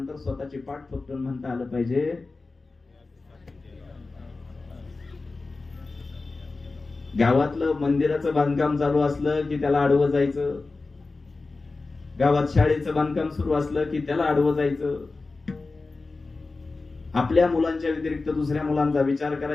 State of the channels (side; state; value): right; quieter; 3.7 dB